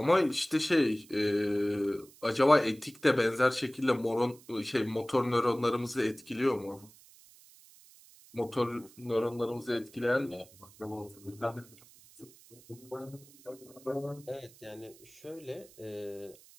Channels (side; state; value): right; noise; hiss, 24 dB below the sound